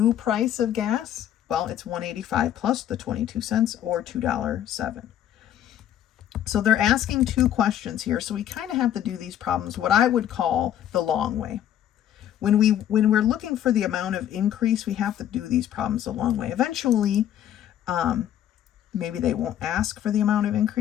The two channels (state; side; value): quieter; right; 11.0 dB